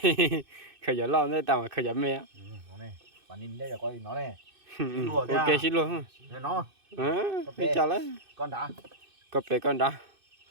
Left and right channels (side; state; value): left; late; 2.6 ms